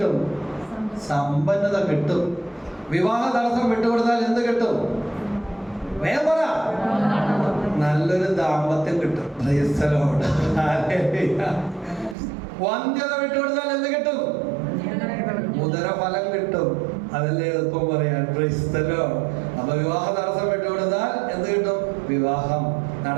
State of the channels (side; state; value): left; drops out; at 12.2 s